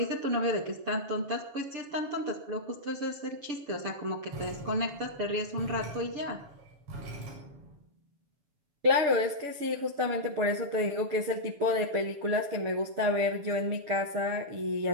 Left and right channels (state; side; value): late; left; 7.1 ms